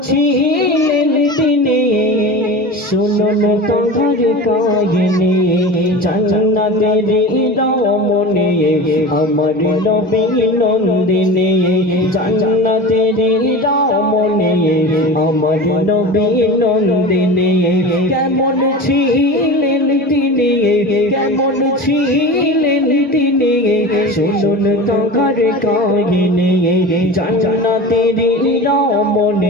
ছিলেন তিনি শুনুন তোমার কাহিনী জান্নাতেরি রমণী আমার নবী নন্দিনী জান্নাতেরি রমণী আমার নবী নন্দিনী কেমন ছিলেন তিনি কেমন ছিলেন তিনি শুনুন তোমার কাহিনী জান্নাতেরি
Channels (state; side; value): normal; both; correlation 0.32